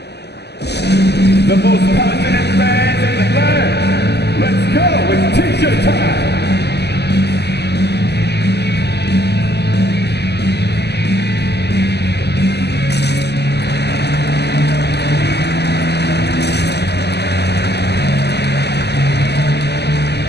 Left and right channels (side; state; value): right; late; 0.49 ms